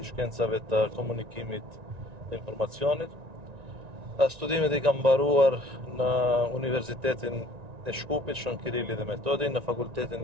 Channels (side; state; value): left; late; 1.9 ms